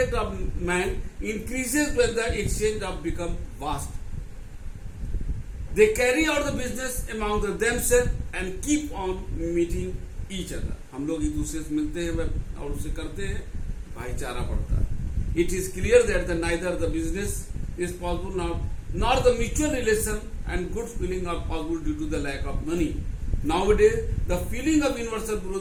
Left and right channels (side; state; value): both; identical; correlation 1.00